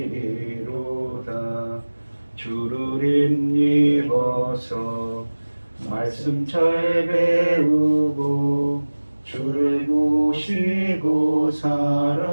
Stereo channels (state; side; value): inverted; both; correlation -1.00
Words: 주를 힘입어서 말씀 잘 배우고 주를 모시고